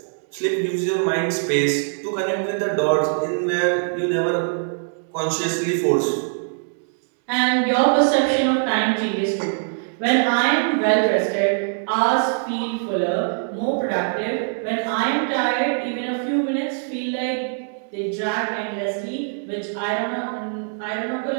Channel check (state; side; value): silent; left; digital silence